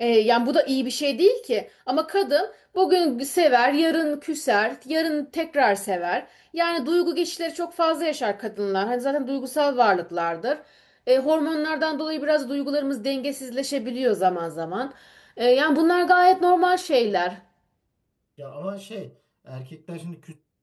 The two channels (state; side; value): identical; both; correlation 1.00